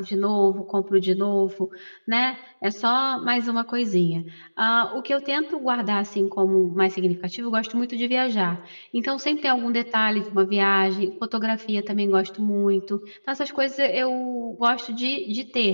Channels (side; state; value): both; inverted; correlation -1.00